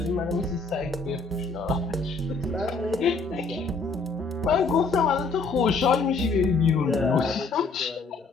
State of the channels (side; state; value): right; quieter; 4.1 dB